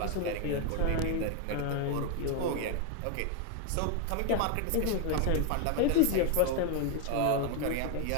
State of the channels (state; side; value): different; both; correlation 0.01